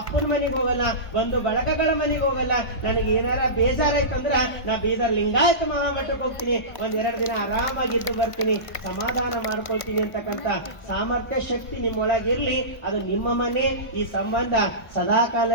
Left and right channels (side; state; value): right; late; 1.0 ms